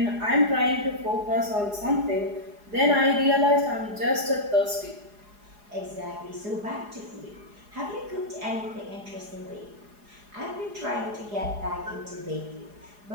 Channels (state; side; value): late; left; 4.8 ms